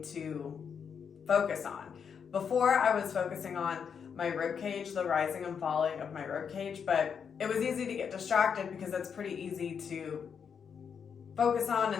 to focus on. Before, I was focusing on my rib cage, the rising and falling of my rib cage, but it was easy to get distracted because that's pretty easy to focus on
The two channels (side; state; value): right; quieter; 6.9 dB